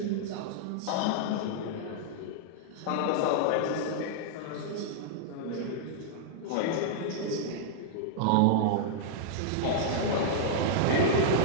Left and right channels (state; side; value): different; both; correlation -0.02